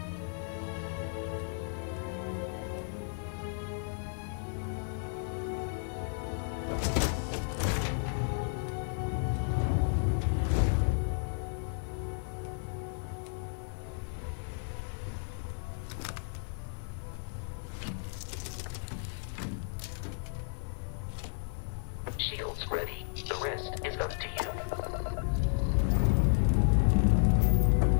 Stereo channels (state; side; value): silent; right; digital silence